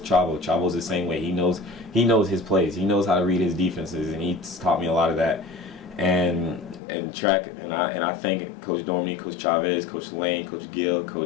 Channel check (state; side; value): drops out; right; at 6.8 s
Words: Chavo's the same way. He knows his plays. He knows how to read his defenses, and he's taught me a lot of that. and track, and I thank Coach Dormy, Coach Chavez, Coach Lane, Coach Gill,